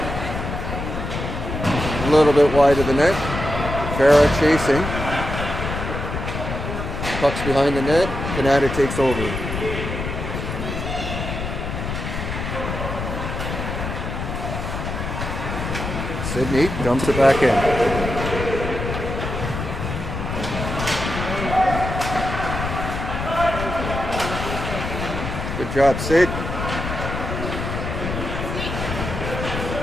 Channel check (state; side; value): noise; left; rumble, 5 dB below the sound